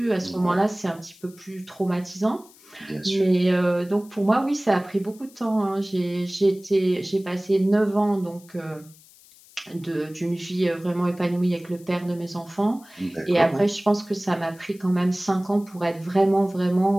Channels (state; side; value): noise; left; hiss, 25 dB below the sound